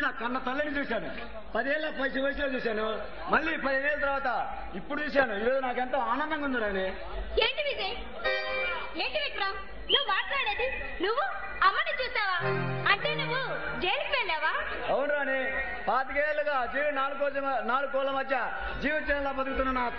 నా కన్న తల్లిని చూశాను 10 ఏళ్ళ వయసులో చూశాను మళ్ళీ 15 ఏళ్ళ తర్వాత ఇప్పుడు చూశాను ఈరోజు నాకెంతో ఆనందంగా ఉంది రాణి ఏంటి విజయ్ ఏంటి విక్రమ్ నువ్వు మాట్లాడేది నువ్వు అమ్మని చూసావా అంటే నువ్వు జైలుకి వెళ్ళావా అవును రాణి 25 ఏళ్ళుగా జీవి 4 కోళ్ళ మధ్య జీవితంలో బతుకుతున్న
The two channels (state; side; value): identical; both; correlation 1.00